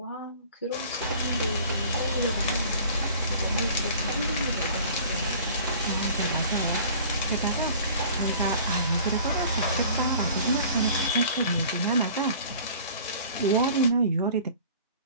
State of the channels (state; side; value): inverted; both; correlation -0.47